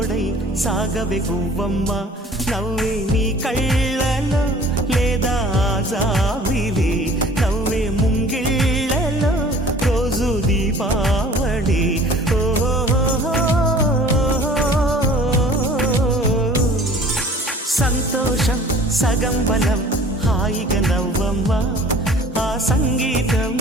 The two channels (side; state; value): both; normal; correlation 0.49